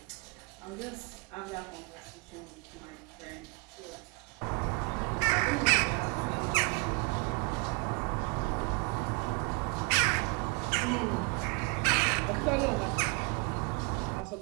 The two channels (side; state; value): left; quieter; 30.8 dB